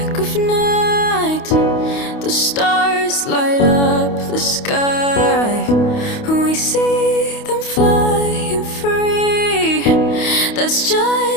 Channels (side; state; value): right; late; 28 ms